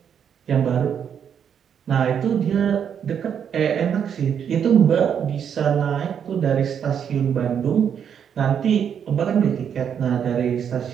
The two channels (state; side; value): quieter; left; 8.1 dB